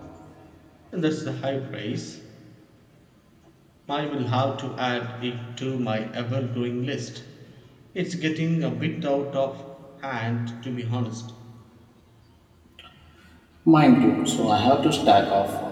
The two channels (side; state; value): both; identical; correlation 1.00